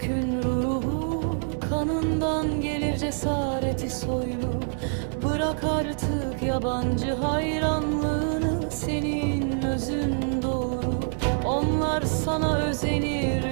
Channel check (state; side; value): silent; left; digital silence